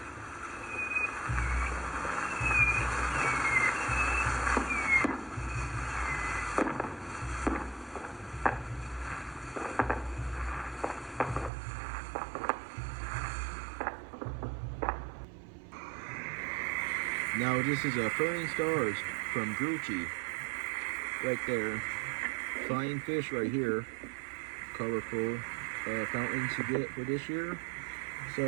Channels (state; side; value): drops out; left; at 11.5 s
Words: now this is a Flying Stars from Grucci, right there. Flying fish right here. Colorful fountains to get for this year.